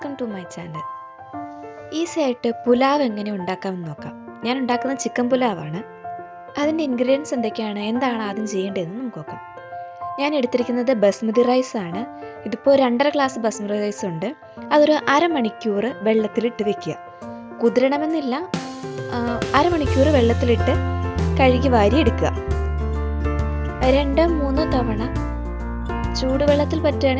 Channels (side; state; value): both; identical; correlation 1.00